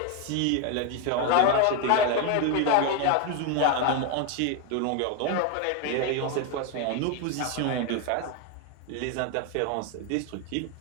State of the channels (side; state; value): both; different; correlation 0.01